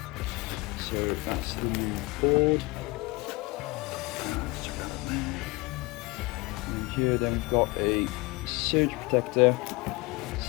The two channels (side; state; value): right; quieter; 24.2 dB